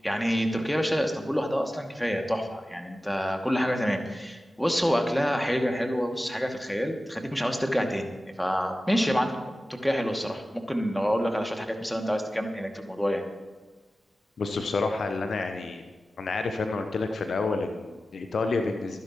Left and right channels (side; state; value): both; normal; correlation 0.95